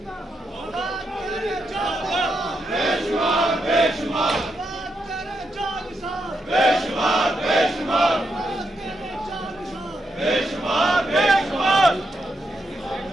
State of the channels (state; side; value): normal; both; correlation 0.82